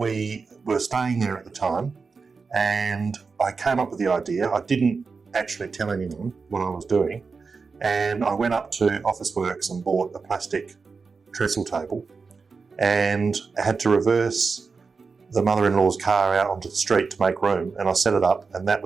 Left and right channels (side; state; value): left; quieter; 4.8 dB